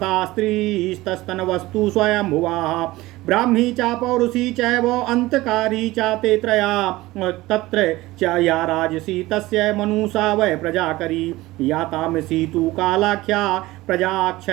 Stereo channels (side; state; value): left; quieter; 18.7 dB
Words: स्त्रीस्तस्तनवस्तु स्वयंभुवाः ब्राह्मी च पौरुषी चैव अंतकारी च ते त्रया तत्र च या राजसी तस्य मनुषा वै प्रजाकरी या तामसी तु कालाख्या